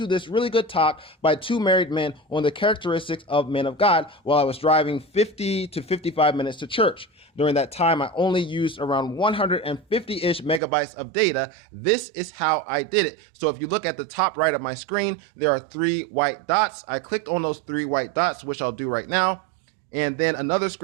this really good talk by two married men on the characteristics of men of God while I was driving 50 to 55 minutes to church. During that time, I only used around 150-ish megabytes of data. This is how I did it. So if you look at the top right of my screen, there are 3 white dots. I clicked on those 3 white dots, which I'll do right now. And then another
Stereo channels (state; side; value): drops out; left; at 10.6 s